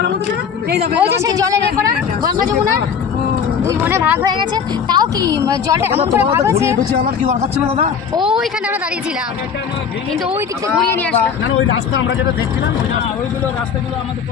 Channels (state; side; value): quieter; right; 6.8 dB